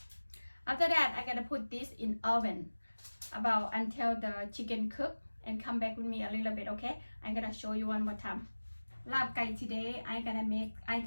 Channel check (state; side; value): inverted; both; correlation -1.00